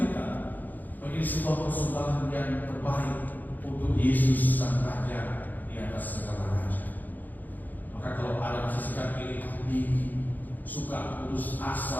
menjadi sebuah persembahan yang terbaik untuk Yesus sang Raja di atas segala raja. Maka kalau ada masih sikap iri hati, suka putus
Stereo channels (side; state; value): right; late; 0.084 ms